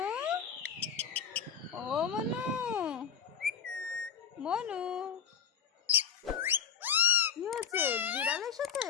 ও মনু, মনু, কি হচ্ছে? বিড়াল এসেছে?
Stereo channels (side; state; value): right; quieter; 7.5 dB